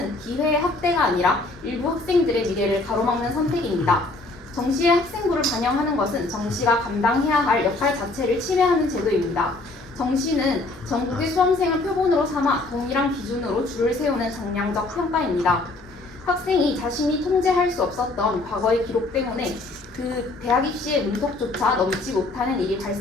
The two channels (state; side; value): quieter; right; 3.0 dB